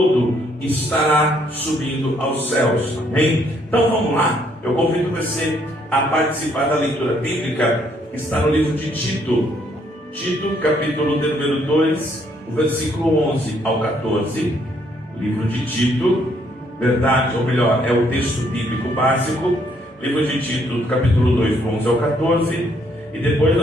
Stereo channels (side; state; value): both; normal; correlation 0.69